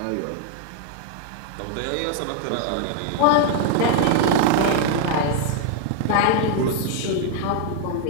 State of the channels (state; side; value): different; both; correlation 0.00